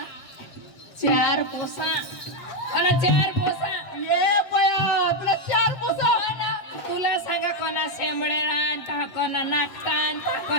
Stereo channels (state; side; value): late; right; 8.0 ms